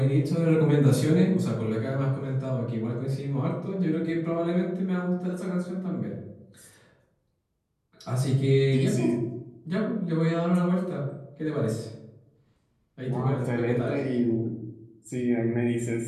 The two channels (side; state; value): both; identical; correlation 1.00